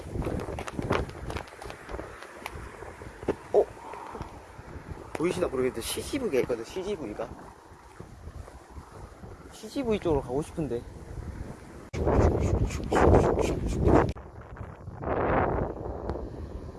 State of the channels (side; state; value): both; identical; correlation 1.00